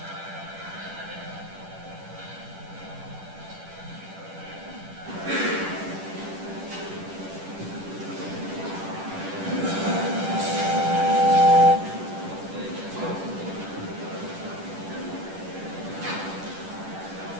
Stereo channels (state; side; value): late; left; 10 ms